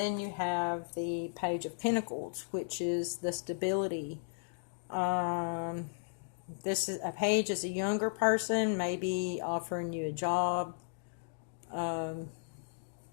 you have the Page of Pentacles, which is the stability. This is a page is a younger person, maybe offering you a job of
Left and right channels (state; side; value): silent; right; digital silence